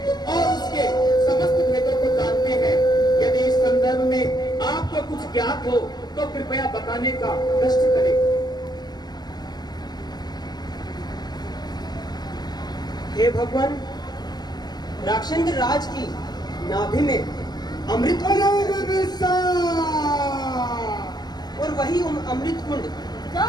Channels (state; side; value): late; right; 0.20 ms